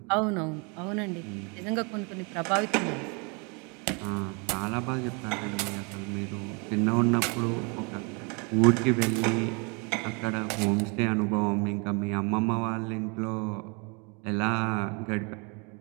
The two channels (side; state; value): left; quieter; 32.6 dB